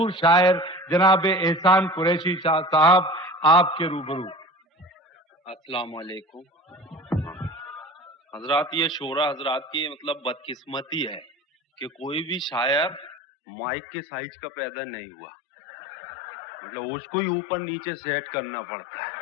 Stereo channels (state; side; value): drops out; right; at 13.2 s